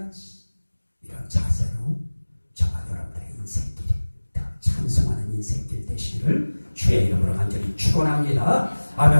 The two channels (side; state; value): both; inverted; correlation -1.00